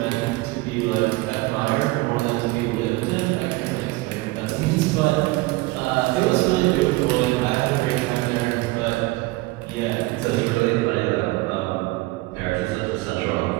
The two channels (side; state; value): left; quieter; 21.3 dB